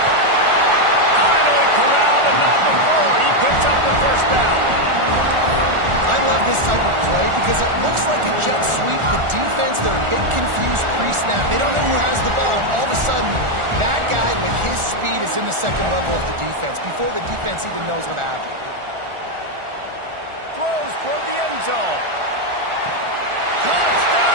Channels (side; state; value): left; late; 1.4 ms